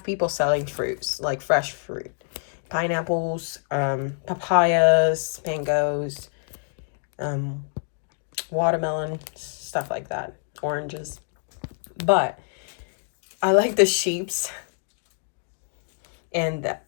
people selling fruits, like fresh fruit. Pineapples, papayas, mangoes, watermelon, stuff like that, oranges. But I like the sheeps, and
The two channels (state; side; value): silent; right; digital silence